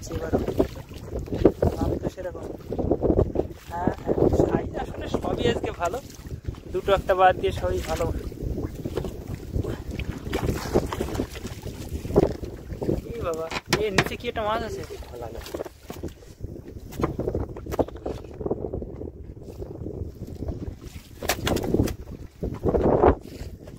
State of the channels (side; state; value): both; identical; correlation 1.00